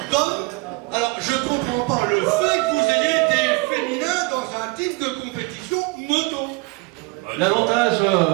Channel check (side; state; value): left; quieter; 25.7 dB